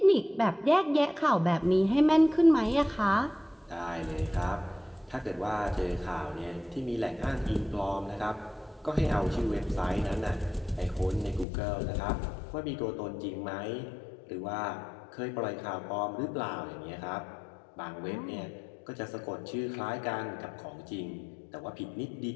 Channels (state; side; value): drops out; right; at 11.5 s